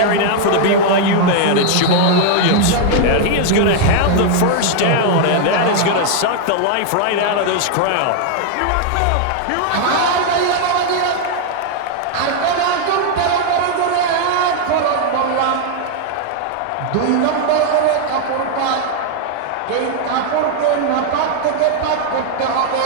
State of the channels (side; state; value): both; different; correlation 0.00